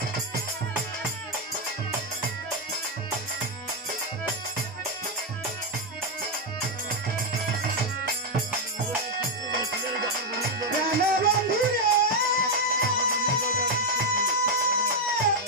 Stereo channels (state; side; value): normal; both; correlation 0.02